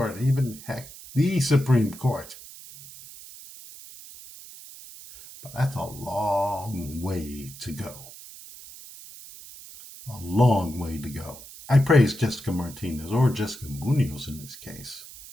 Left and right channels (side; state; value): right; noise; hiss, 16 dB below the sound